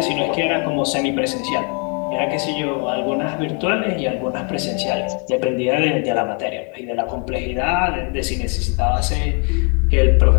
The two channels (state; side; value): quieter; right; 37.8 dB